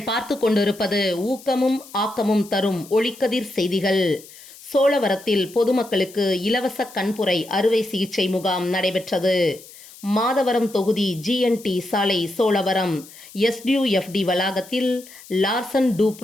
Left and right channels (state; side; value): noise; left; hiss, 20 dB below the sound